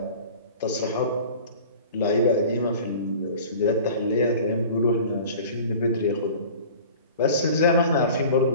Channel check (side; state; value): both; inverted; correlation -0.42